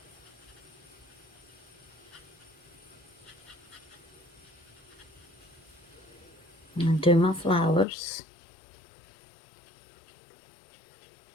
And do my flowers.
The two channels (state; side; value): drops out; right; at 7.9 s